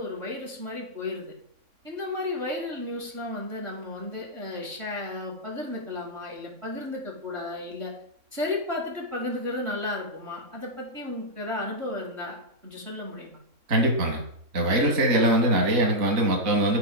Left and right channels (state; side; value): late; left; 3.6 ms